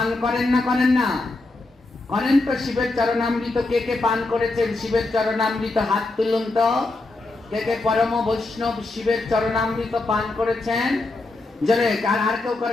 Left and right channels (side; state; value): right; quieter; 3.1 dB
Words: করেন না করেন না? করেন তো। শিবের চরণামৃত কে কে পান করেছেন? শিবের চরণামৃত হাত তুলুন তো। কে কে পরম বৈষ্ণব শিবের চরণামৃত পান করেছেন? জোরে। আর কেউ